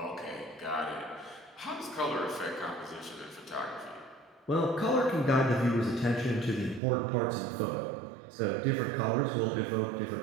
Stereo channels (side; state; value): left; drops out; at 6.8 s